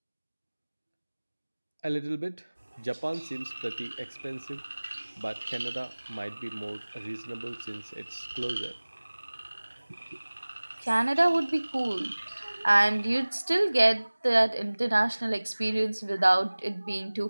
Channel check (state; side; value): inverted; both; correlation -1.00